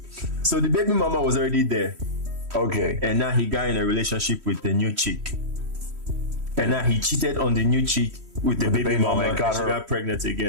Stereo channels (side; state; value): left; late; 3.1 ms